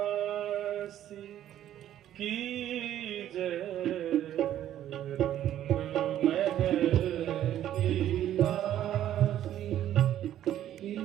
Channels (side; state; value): left; quieter; 11.7 dB